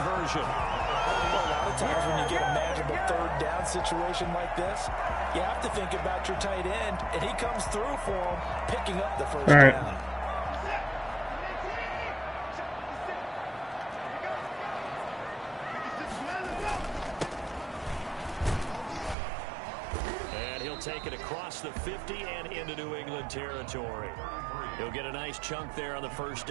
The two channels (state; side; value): drops out; left; at 19.2 s